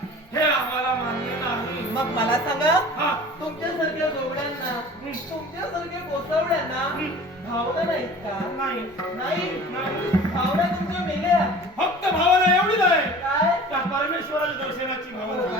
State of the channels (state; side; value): normal; both; correlation 0.43